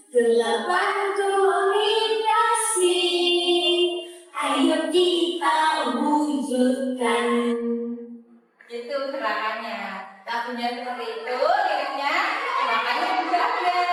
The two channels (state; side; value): identical; both; correlation 1.00